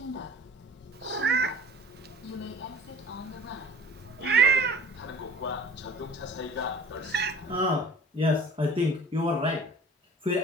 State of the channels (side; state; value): both; normal; correlation 0.45